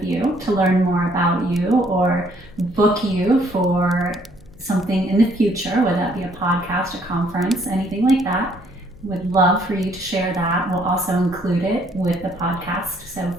you to learn more about you or book you for something in the future, whether that be a podcast, a conference, anything like that, would love for you to share that. We'll also include it with the podcast so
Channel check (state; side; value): noise; left; hum, 24 dB below the sound